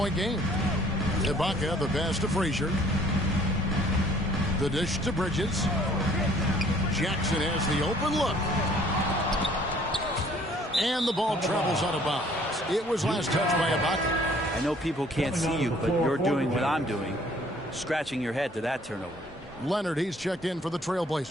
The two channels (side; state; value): both; normal; correlation 0.57